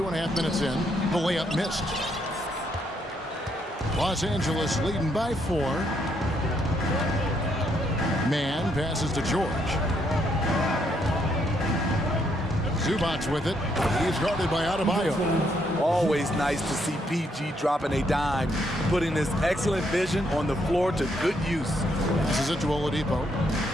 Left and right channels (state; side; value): normal; both; correlation 0.74